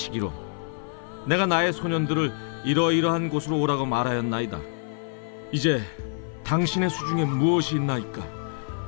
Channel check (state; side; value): silent; right; 55 dB below the other